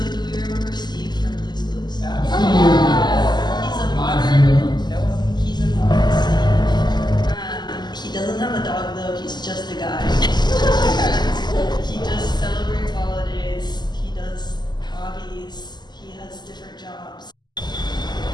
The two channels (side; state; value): right; late; 0.21 ms